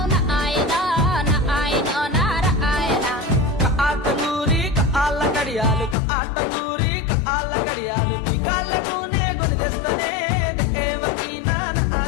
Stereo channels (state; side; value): drops out; right; at 6.0 s